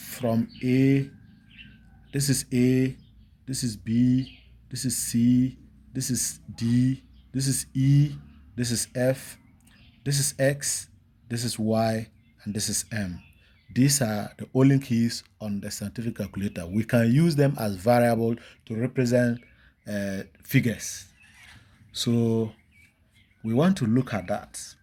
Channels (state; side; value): identical; both; correlation 1.00